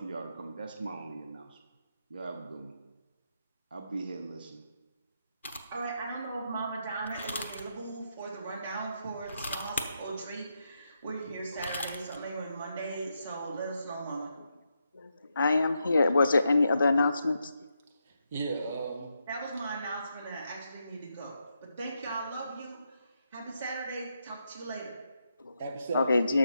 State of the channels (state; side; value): inverted; both; correlation -0.83